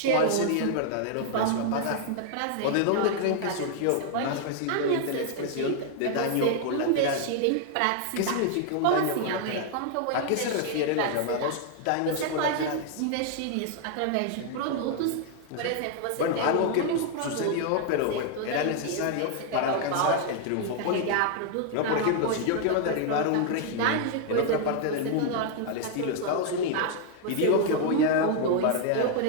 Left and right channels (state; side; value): different; both; correlation 0.00